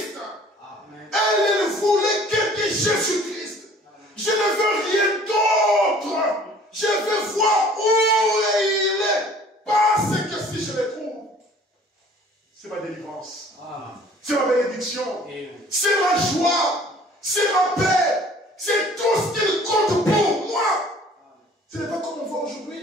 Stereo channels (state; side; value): normal; both; correlation 0.52